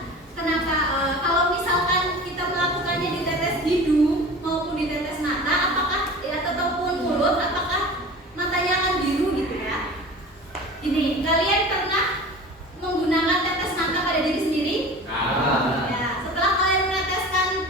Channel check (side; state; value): both; normal; correlation 0.37